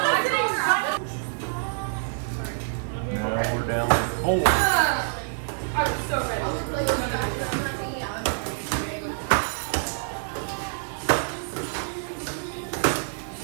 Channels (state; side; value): silent; left; digital silence